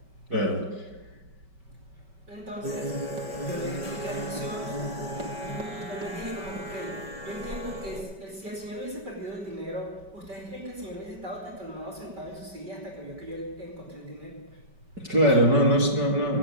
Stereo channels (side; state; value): left; late; 5.2 ms